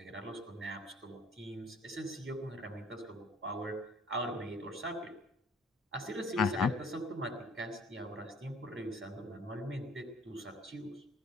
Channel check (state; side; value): normal; both; correlation 0.54